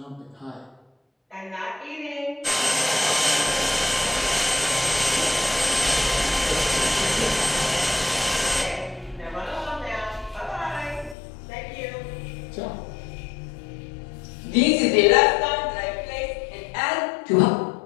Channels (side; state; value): right; drops out; at 11.2 s